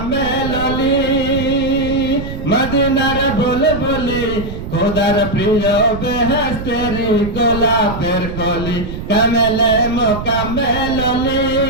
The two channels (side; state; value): right; noise; rumble, 8 dB below the sound